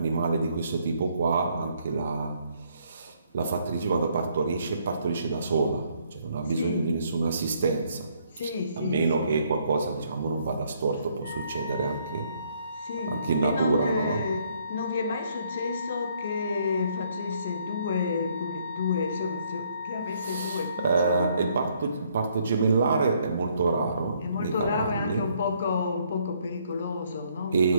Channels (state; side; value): inverted; both; correlation -0.68